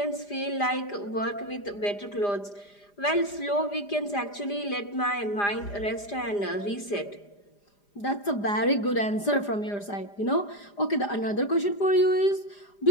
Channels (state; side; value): late; right; 4.9 ms